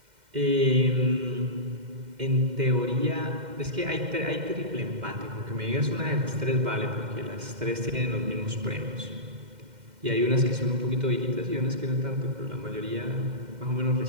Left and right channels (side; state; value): left; late; 2.1 ms